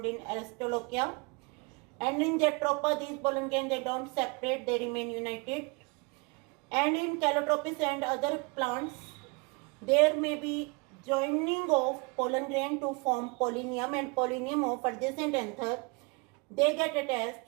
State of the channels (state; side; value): quieter; left; 29.7 dB